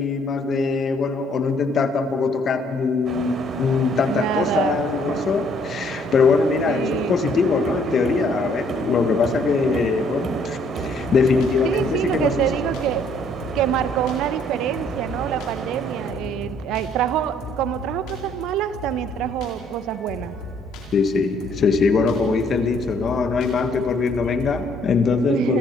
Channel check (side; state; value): both; normal; correlation 0.64